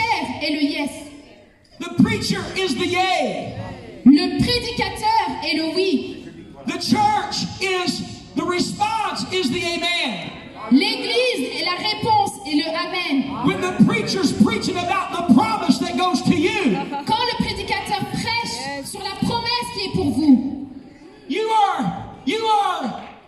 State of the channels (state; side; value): identical; both; correlation 1.00